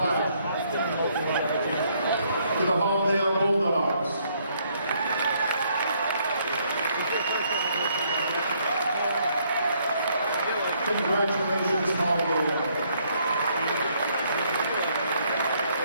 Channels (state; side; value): inverted; both; correlation -0.69